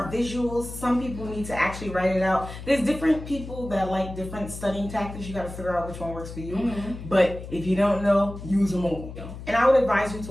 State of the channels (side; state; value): left; noise; hum, 11 dB below the sound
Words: visuals. Some people need to actually write it out. There's different people that like different studying tactics. You got to figure out which one works for you. But if you don't know, use them all. And I would advise you to